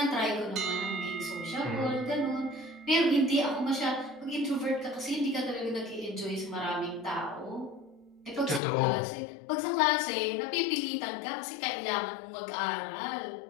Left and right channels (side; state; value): right; drops out; at 8.6 s